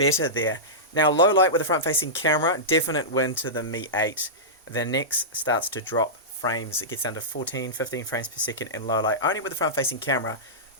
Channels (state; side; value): normal; both; correlation -0.15